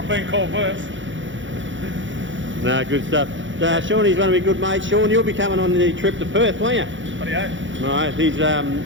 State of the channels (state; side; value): late; left; 0.55 ms